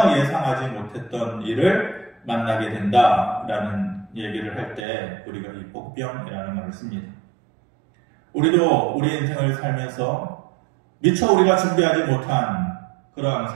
예상하지 못했던 일을 만나게 된다라는 얘기를 할 때 우리가 이 복병이라는 말을 씁니다. 우리도 우리 인생을 살면서 미처 우리가 준비하지 못한 그런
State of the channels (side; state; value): left; drops out; at 4.9 s